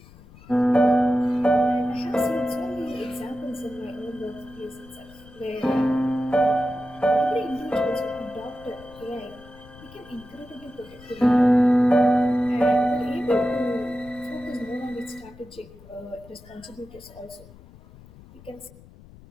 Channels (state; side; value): noise; left; rumble, 22 dB below the sound